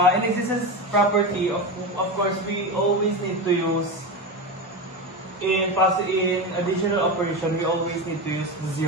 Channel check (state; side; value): normal; both; correlation 0.20